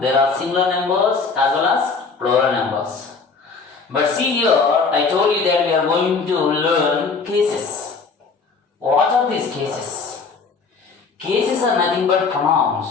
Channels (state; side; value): quieter; right; 4.7 dB